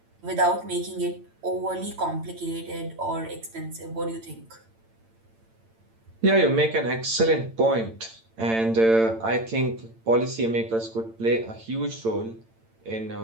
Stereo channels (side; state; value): left; late; 8.9 ms